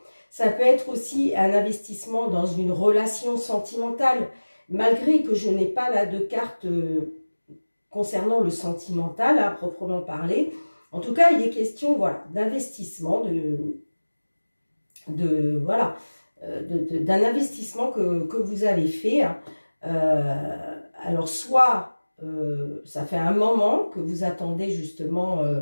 Ça peut être aussi un investissement dans une relation sentimentale, malgré que je n'ai pas là de carte concernant le sentimental, à proprement parler. En tout cas, il est question voilà, d'investissement, voilà, d'un investissement que vous avez fait. Alors, soit ça fait un moment que vous attendez justement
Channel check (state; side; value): inverted; both; correlation -1.00